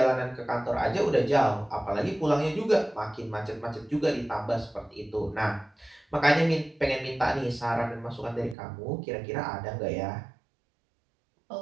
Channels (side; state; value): left; drops out; at 8.6 s